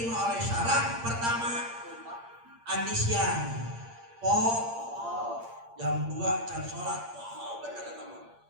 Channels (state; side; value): late; left; 8.7 ms